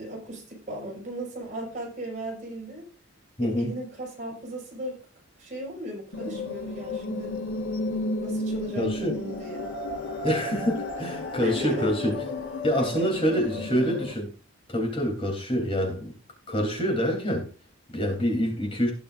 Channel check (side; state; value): both; normal; correlation 0.51